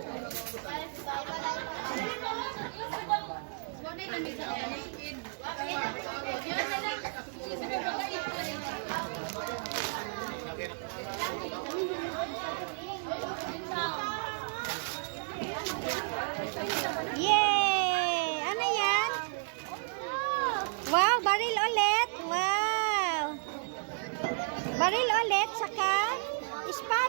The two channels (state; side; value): silent; left; digital silence